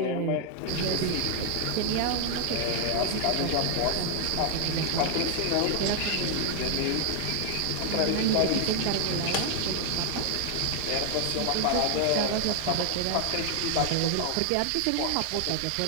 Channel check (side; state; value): both; different; correlation 0.00